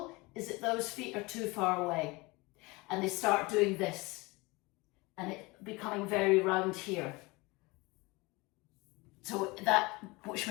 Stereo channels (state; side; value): quieter; right; 24.2 dB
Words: is that those feet are too far away. And they start doing this. And it becoming very round here. So which